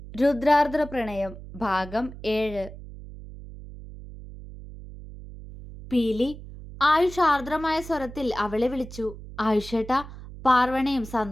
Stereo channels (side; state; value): right; noise; hum, 14 dB below the sound